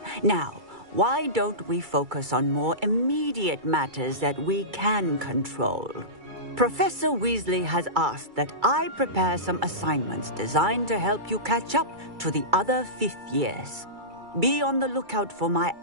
Now, why don't we focus on more immediate matters that we can control? Professor Weasley has asked that I prepare some assignments designed to help you catch up to the other fifth years. Be on the lookout for my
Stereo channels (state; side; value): late; left; 2.3 ms